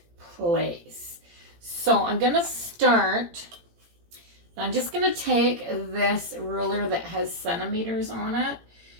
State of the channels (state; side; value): late; left; 17 ms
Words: place. So I'm gonna start, I'm just gonna take this ruler that has centimeters on it,